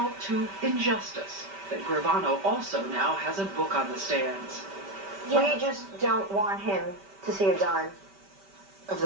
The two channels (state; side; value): late; left; 5.1 ms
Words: to injustice that Gravano also now has a book on the stands. We just don't want him to see a dime of